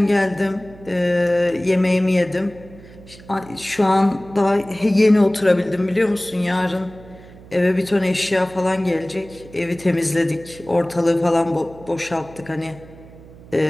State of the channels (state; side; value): noise; right; hum, 20 dB below the sound